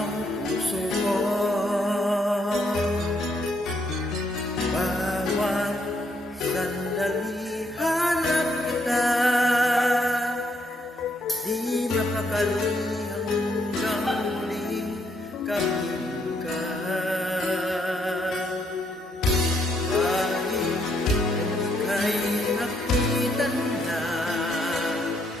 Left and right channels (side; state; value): both; normal; correlation 0.74